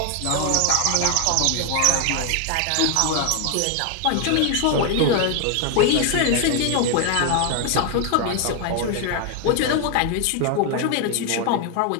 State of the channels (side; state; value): both; different; correlation 0.01